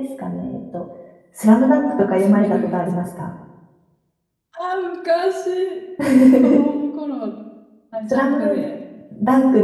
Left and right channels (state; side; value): identical; both; correlation 1.00